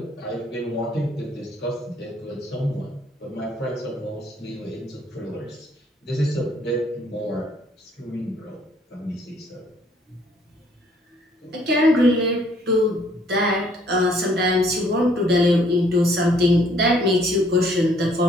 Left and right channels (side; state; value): both; normal; correlation 0.63